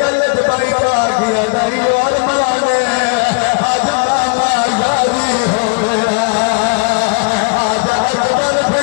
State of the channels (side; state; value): right; quieter; 31.2 dB